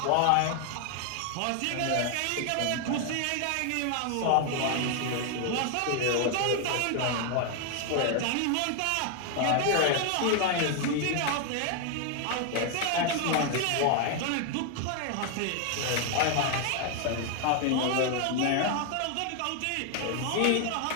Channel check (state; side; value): different; both; correlation 0.00